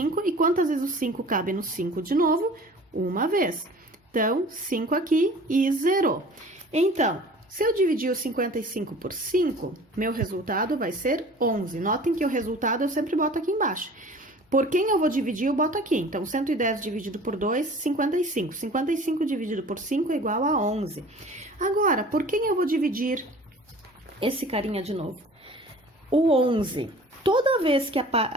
E quantas vezes o 5 cabe no 5 de novo? Uma vez. Então, 5 aqui e zerou. Então, se eu dividir o 55 por 5, meu resultado vai ser 11. Notem que o resultado eu sempre boto aqui embaixo. Por quem eu vou dividir, eu boto aqui. Então, 110 dividido por 2, 55. 55 dividido por 5 é igual a 11. Agora, por quem eu vou dividir esse carinha de novo? O 11. Toda vez que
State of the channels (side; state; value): both; normal; correlation 0.45